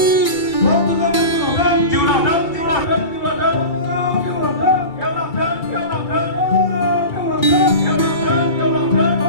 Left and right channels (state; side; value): late; right; 2.3 ms